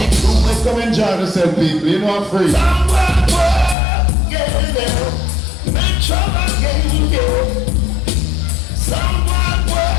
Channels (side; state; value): right; drops out; at 3.8 s